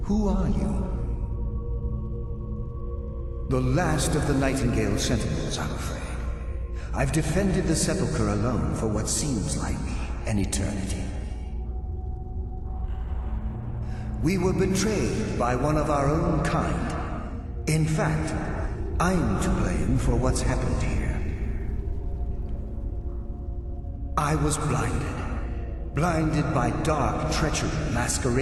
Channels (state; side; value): identical; both; correlation 1.00